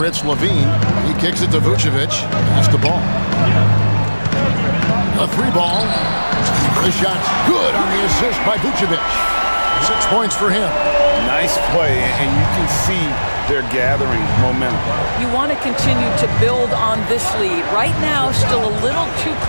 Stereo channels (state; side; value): inverted; both; correlation -1.00